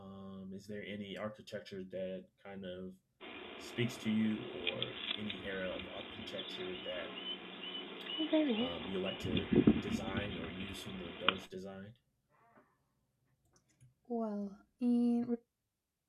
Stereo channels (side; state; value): both; identical; correlation 1.00